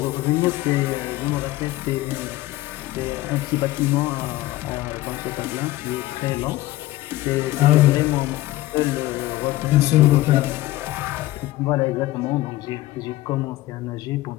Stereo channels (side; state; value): right; quieter; 16.8 dB